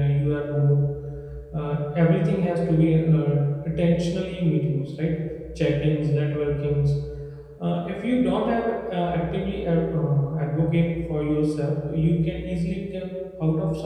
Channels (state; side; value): identical; both; correlation 1.00